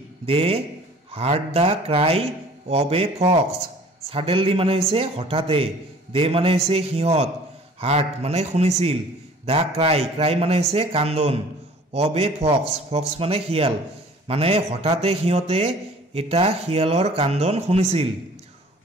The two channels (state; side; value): normal; both; correlation 0.50